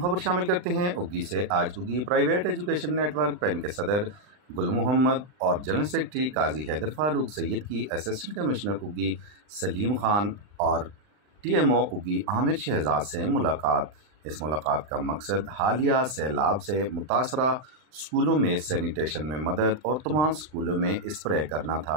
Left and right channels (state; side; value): late; left; 39 ms